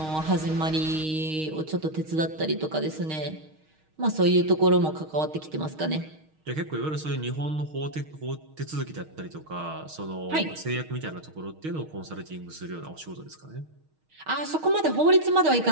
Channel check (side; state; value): left; late; 6.4 ms